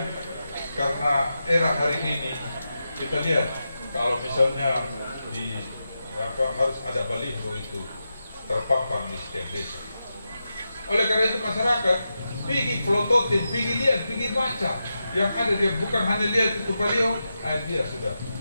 Karena era hari ini kita lihat kalau misalnya harus ada baliho itu terpampang di setiap desa. Oleh karena itu masyarakat pergi pelototin, pergi lihat, pergi baca. Yang ada dia bukan hanya lihat itu baliho, dia sudah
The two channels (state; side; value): inverted; both; correlation -0.89